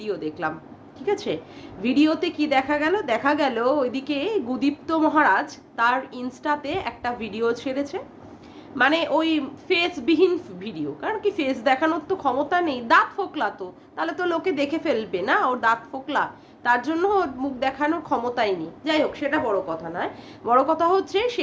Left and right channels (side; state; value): both; identical; correlation 1.00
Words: দেখলাম, ঠিক আছে? ভিডিওতে কি দেখা গেল ওইদিকে গুদীপ্ত মহারাজ তার ইনস্টাতে একটা ভিডিও ছেড়েছে। মানে ওই ফেসবিহীন ভিডিও, কারণ কি ফেস দেখানোর তো ক্ষমতা নেই, দাঁত ফোকলা তো, তাহলে তো লোকে দেখে ফেলবে না ওর দাঁত ফোকলা, তার জন্য ওর মুখ দেখানোর ক্ষমতাই নেই। যাই হোক, সেটা বড় কথা নয়। বড় কথা হচ্ছে